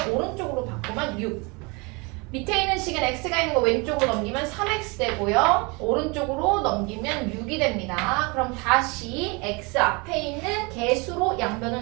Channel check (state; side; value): quieter; left; 28.6 dB